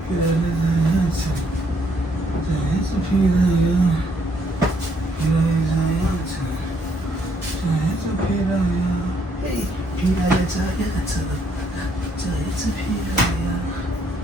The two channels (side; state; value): both; normal; correlation 0.70